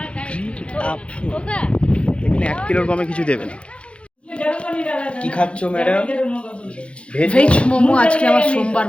होगा এখানে 1 কিলোর কমে কিছু দেবে না। কি খাচ্ছ ম্যাডাম? ভেজ ভেজ মোমো আজকে আমার সোমবার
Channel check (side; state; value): right; late; 0.060 ms